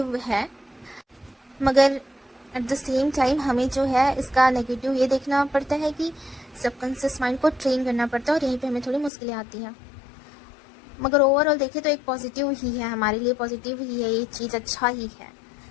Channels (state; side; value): drops out; right; at 9.1 s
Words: है, मगर एट द सेम टाइम हमें जो है इसका नेगेटिव ये देखना पड़ता है कि सबकॉन्शियस माइंड को ट्रेन करना पड़ता है, और यहीं पे हमें थोड़ी मुश्किलें आती हैं। मगर ओवरऑल देखें तो एक पॉजिटिव ही है, हमारे लिए पॉजिटिव ही है, ये चीज़ अच्छा ही है।